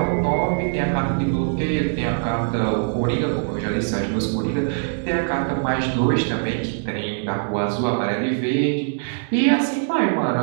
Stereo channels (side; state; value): left; silent; 64 dB below the other